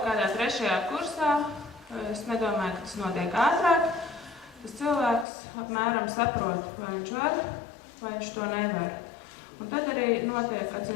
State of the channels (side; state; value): right; drops out; at 5.2 s